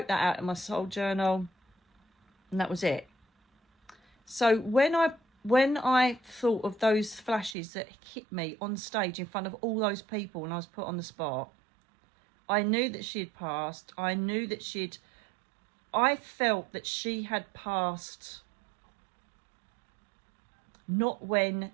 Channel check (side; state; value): left; drops out; at 7.6 s